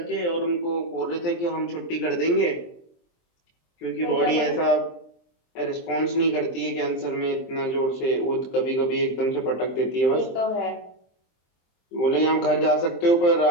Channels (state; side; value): late; right; 23 ms